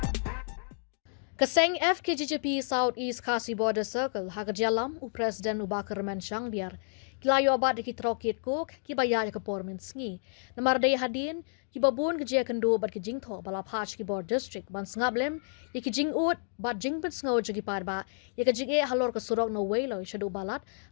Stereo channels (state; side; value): silent; right; digital silence